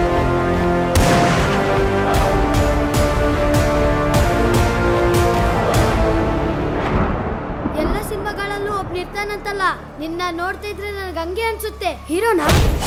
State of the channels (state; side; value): identical; both; correlation 1.00